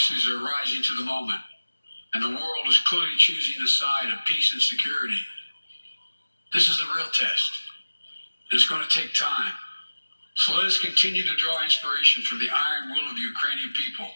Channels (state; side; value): inverted; both; correlation -1.00